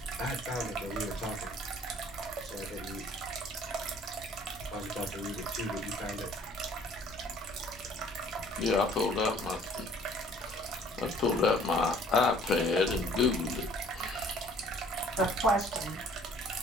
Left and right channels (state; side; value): normal; both; correlation 0.55